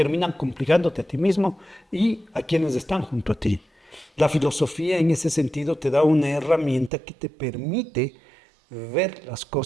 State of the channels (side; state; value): left; drops out; at 6.9 s